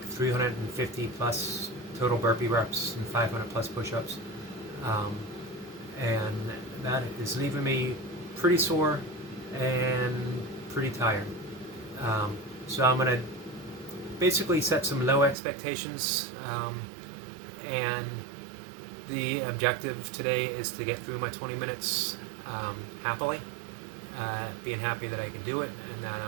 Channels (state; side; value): drops out; left; at 15.4 s